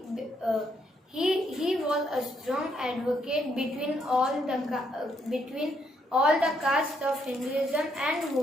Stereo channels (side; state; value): both; normal; correlation 0.74